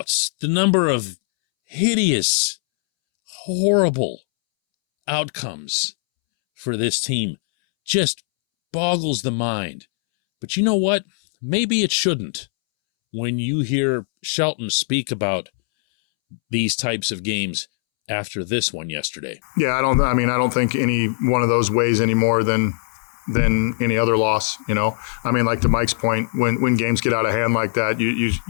the number of hideous, horrible outcomes for this team just boggles the mind. But you know what? Maybe it shouldn't. When you hear Shelton speak about these types of games after this one yesterday. Yeah, I don't think any one of those weighs any more than any other loss, you know. I mean, like to Mike's point, when games get out of hand like that,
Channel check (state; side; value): silent; right; 65 dB below the other